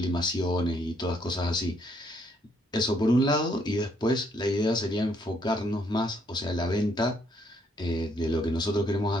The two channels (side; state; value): both; normal; correlation 0.70